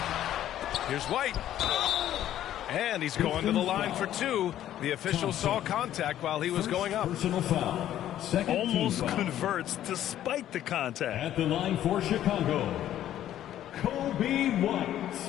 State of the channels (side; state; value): right; quieter; 12.0 dB